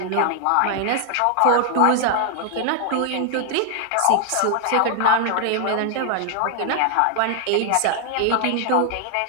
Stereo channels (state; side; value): different; both; correlation 0.00